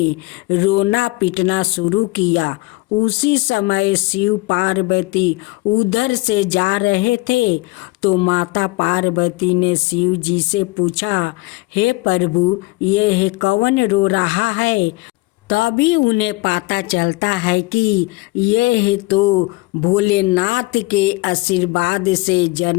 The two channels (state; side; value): quieter; right; 23.0 dB